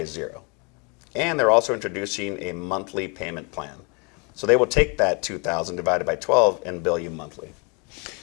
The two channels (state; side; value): quieter; right; 31.9 dB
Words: $0. And they're also introducing a monthly payment plan. So they will take that $2,000 divided by 12 and bill you monthly.